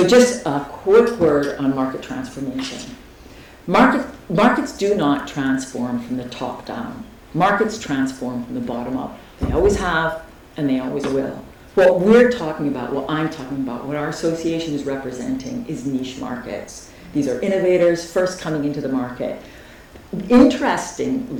just a quick word on market transformation. Markets do not transform from the top down. Markets transform from the bottom up. They always have, and they always will. What we're talking about, what I'm talking about, what our association is representing is niche markets. These are innovators first coming into the market.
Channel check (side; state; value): both; identical; correlation 1.00